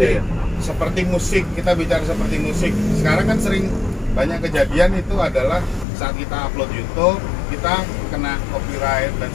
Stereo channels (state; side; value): drops out; right; at 5.9 s